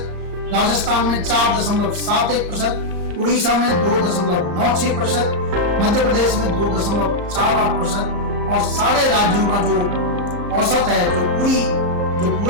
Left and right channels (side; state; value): left; late; 34 ms